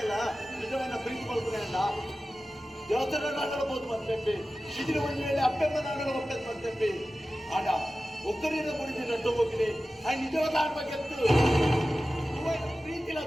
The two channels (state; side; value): normal; both; correlation 0.95